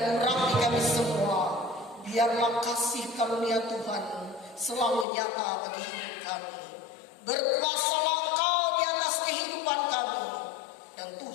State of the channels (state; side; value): drops out; right; at 5.1 s